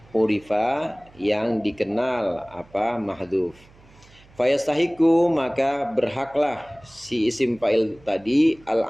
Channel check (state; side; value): noise; right; hum, 27 dB below the sound